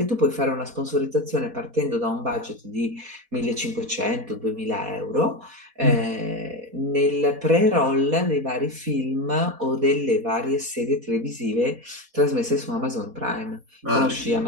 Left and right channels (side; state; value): left; late; 4.2 ms